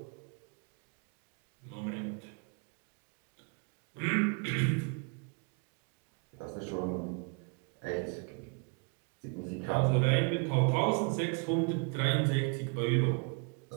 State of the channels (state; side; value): quieter; left; 36.2 dB